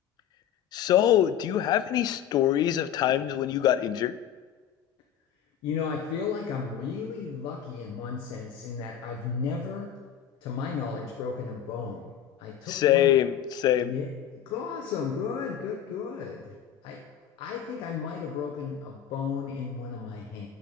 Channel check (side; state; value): right; quieter; 9.5 dB